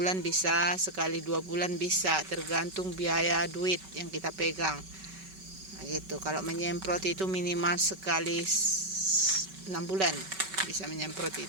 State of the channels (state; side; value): late; left; 5.2 ms